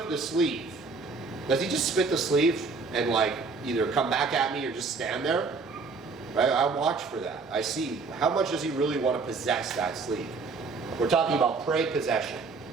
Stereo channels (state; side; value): quieter; left; 4.4 dB